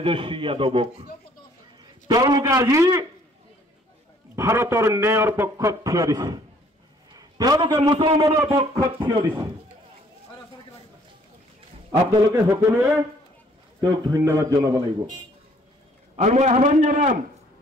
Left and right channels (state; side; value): normal; both; correlation 0.60